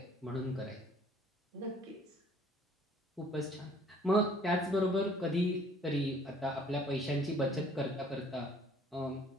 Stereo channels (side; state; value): both; normal; correlation 0.57